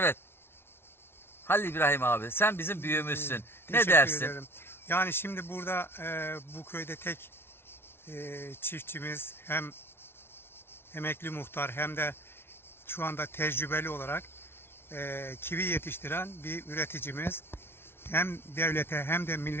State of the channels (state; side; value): late; right; 0.12 ms